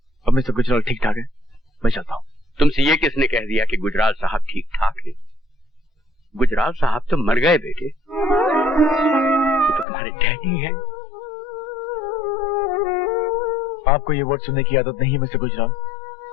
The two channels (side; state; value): right; drops out; at 9.9 s